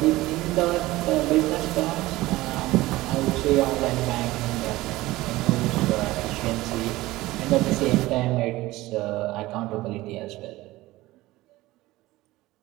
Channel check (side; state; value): left; quieter; 18.3 dB